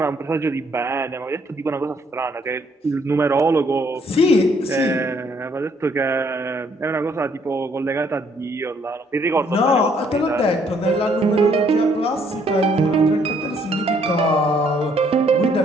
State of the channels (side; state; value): both; normal; correlation 0.67